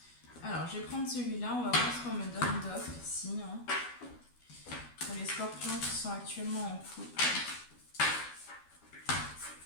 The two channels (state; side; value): late; right; 12 ms